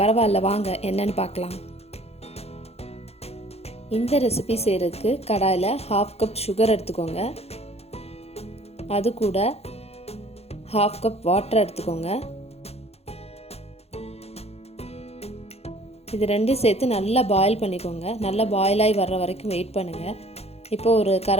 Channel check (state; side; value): late; right; 0.30 ms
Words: பரவாயில்ல, வாங்க என்னன்னு பார்க்கலாம். இந்த ரெசிபி செய்கிறதுக்கு கடாயில் 1/2 கப் சுகர் எடுத்துக்கோங்க. அது கூட 1/2 கப் வாட்டர் எடுத்துக்கோங்க. இது ரெண்டையும் சேர்த்து நல்லா பாயில் பண்ணிக்கோங்க. நல்லா பாயிலாகி வர்ற வரைக்கும் வெயிட் பண்ணுங்கள். இப்போ ஒரு